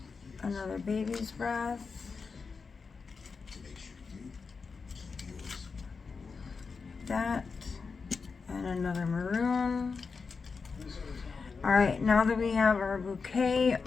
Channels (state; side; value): quieter; right; 4.9 dB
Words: another baby's breath, that, and another maroon. Alright, now that we have our bouquet